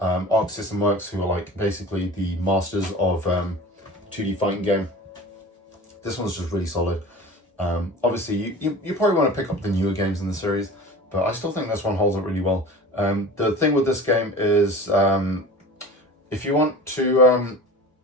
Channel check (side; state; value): both; normal; correlation 0.36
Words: System Works, who are like basically the masters of 2D fighting game. This one's just really solid. Obviously, you probably want to pick up the newer games in the series, but I still think this one holds up really well. The thing with this game is if you want to